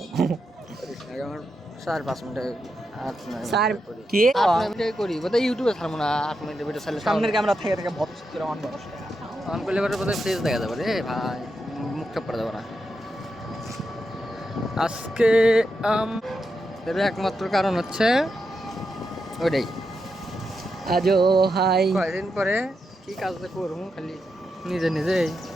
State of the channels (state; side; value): normal; both; correlation 0.86